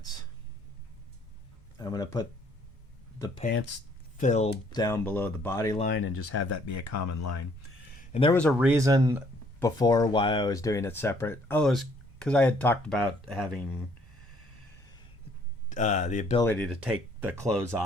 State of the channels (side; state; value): both; normal; correlation 0.63